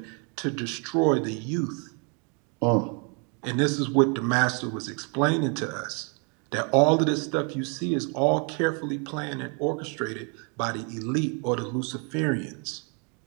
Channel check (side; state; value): left; quieter; 36.5 dB